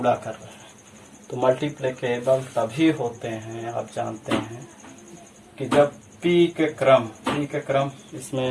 कर रहे हैं। तो मल्टीप्लिकेबल तभी होते हैं, आप जानते हैं, कि जब p के क्रम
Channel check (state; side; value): identical; both; correlation 1.00